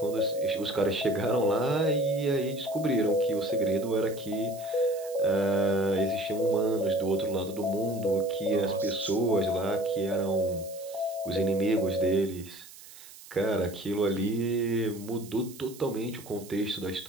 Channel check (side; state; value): right; noise; hiss, 18 dB below the sound